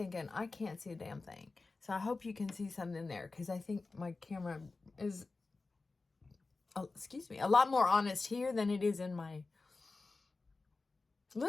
I can't see a damn thing. So I hope you can see something there, because I think my camera is, excuse me, a lot more honest here than it is in my,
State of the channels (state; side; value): quieter; right; 3.7 dB